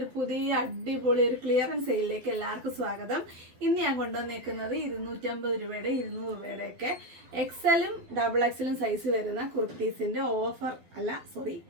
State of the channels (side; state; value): left; late; 12 ms